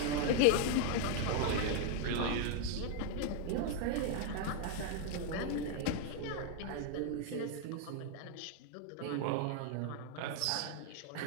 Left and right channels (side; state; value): both; different; correlation 0.00